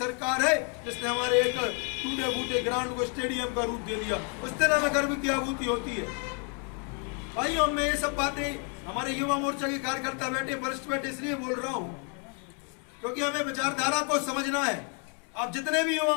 है जिसने हमारे एक टूटे फूटे ग्राउंड को स्टेडियम का रूप दे दिया। उस दिन हमें गर्व की अनुभूति होती है। भाइयों, मैं ये सब बातें हमारे युवा मोर्चा के कार्यकर्ता बैठे, वरिष्ठ बैठे, इसलिए बोल रहा हूं क्योंकि हमें विचारधारा को समझना है। आप जितने भी युवा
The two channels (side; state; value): right; quieter; 39.1 dB